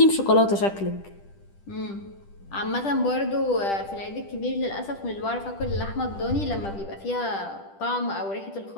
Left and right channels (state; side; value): late; right; 10 ms